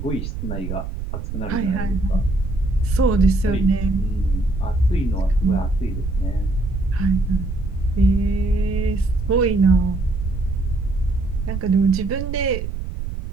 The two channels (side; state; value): right; noise; rumble, 6 dB below the sound